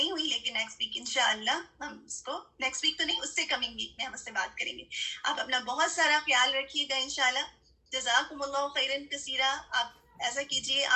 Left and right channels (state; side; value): identical; both; correlation 1.00